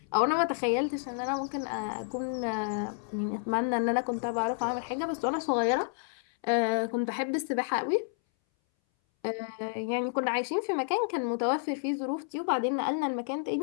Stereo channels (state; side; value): silent; right; 58 dB below the other